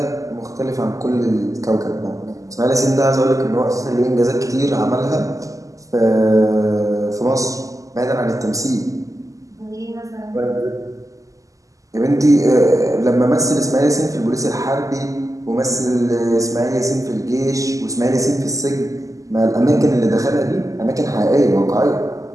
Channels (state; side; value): late; left; 0.16 ms